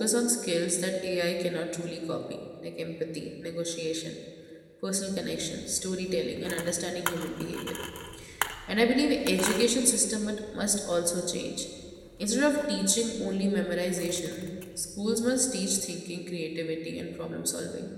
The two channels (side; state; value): both; identical; correlation 1.00